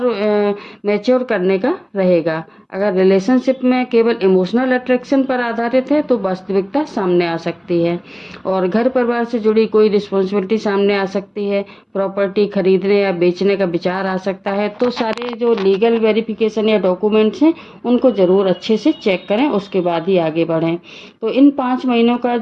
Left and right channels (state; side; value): identical; both; correlation 1.00